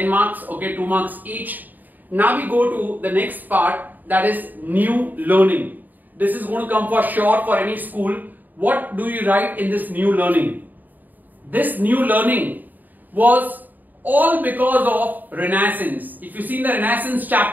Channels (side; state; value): left; late; 0.086 ms